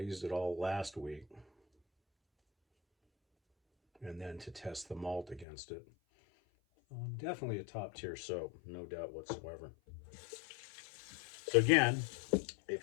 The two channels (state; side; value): drops out; right; at 5.5 s